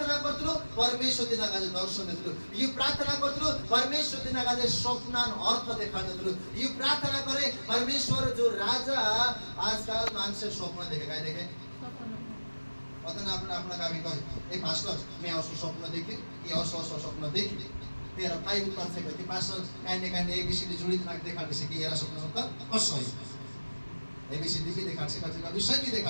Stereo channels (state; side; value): inverted; both; correlation -1.00